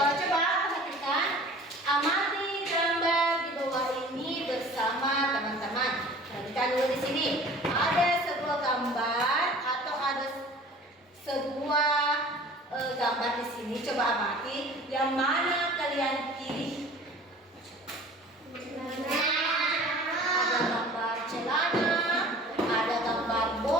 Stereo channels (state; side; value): normal; both; correlation 0.46